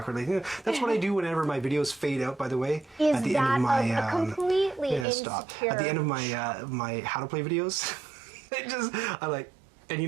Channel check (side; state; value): left; drops out; at 5.1 s